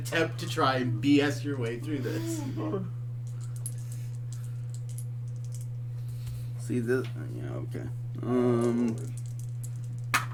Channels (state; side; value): identical; both; correlation 1.00